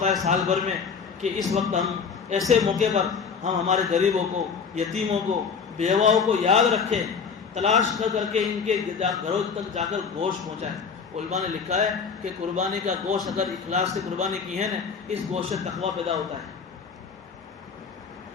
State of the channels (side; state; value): right; quieter; 5.9 dB